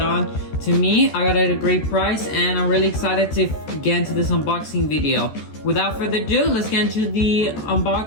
on to me. I got it at a great price, and I'm really excited to get into this unboxing video. Without further ado, let's get into the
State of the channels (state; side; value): late; right; 14 ms